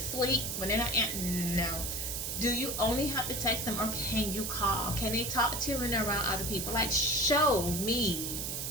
When they're not no. Do you only have to text them, or can you call? Can they talk to you when they're around other people? Like, show me.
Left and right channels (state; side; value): noise; right; hiss, 3 dB below the sound